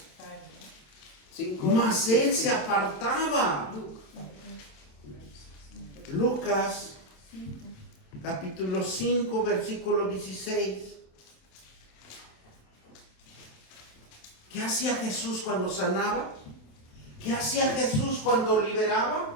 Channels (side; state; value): right; late; 27 ms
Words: Mas él se apartaba. Lucas capítulo 5 versículo 16. ¿Qué hacía Jesús cuando sanaba? ¿Qué hacía Jesús cuando liberaba?